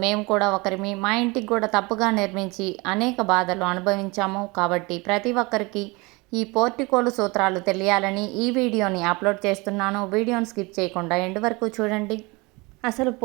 మేము కూడా ఒకరిమి. మా ఇంటికి కూడా తప్పుగా నిర్మించి అనేక బాధలు అనుభవించాము. కాబట్టి ప్రతి ఒక్కరికి ఈ పోర్టికోలు సూత్రాలు తెలియాలని ఈ వీడియోని అప్లోడ్ చేస్తున్నాను. వీడియోని స్కిప్ చేయకుండా ఎండ్ వరకు చూడండి. అసలు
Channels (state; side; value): quieter; left; 25.6 dB